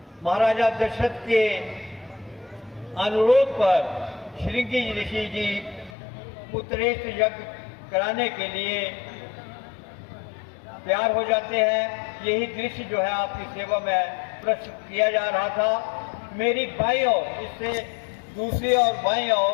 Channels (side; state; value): right; drops out; at 6.0 s